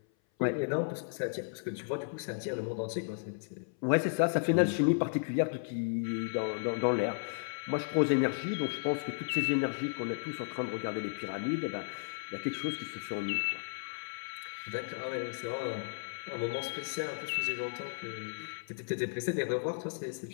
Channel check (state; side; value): silent; right; 55 dB below the other